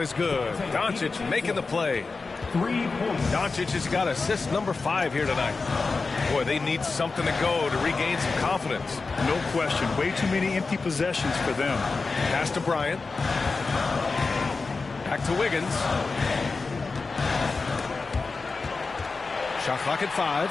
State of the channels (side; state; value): right; quieter; 4.1 dB